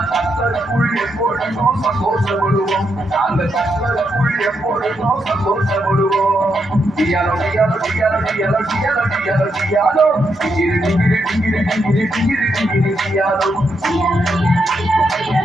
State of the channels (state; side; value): normal; both; correlation 0.81